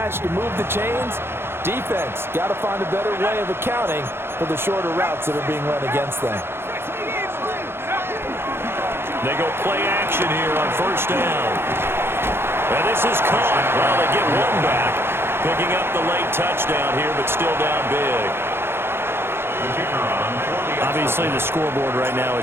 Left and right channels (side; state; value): left; late; 0.11 ms